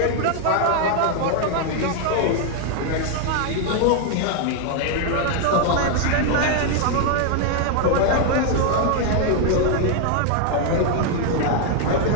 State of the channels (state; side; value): different; both; correlation 0.00